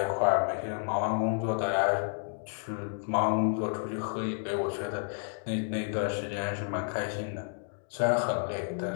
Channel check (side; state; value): right; silent; 57 dB below the other